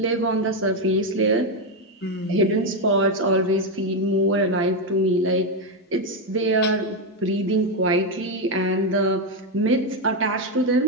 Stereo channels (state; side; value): normal; both; correlation 0.06